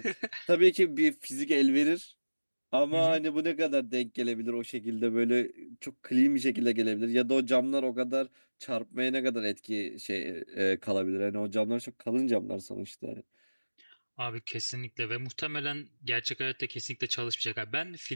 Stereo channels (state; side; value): inverted; both; correlation -1.00